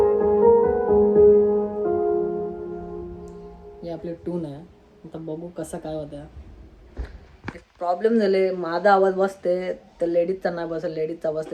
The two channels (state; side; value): identical; both; correlation 1.00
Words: ही आपली टून आहे. आता बघू कसं काय होतं. प्रॉब्लेम झाले, माझा आवाज बसते तर लेडीजचा नाही बसत, लेडीजचा